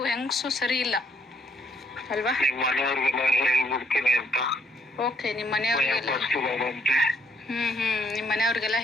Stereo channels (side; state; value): both; normal; correlation 0.69